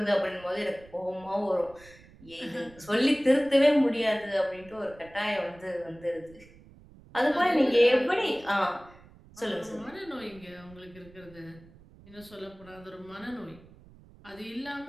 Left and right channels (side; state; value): right; noise; rumble, 23 dB below the sound